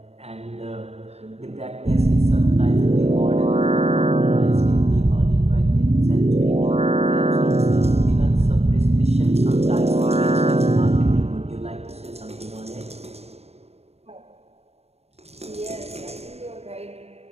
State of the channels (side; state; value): left; late; 0.30 ms